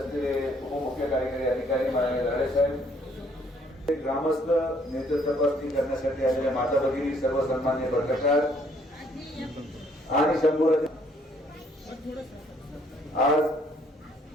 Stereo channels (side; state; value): both; normal; correlation 0.64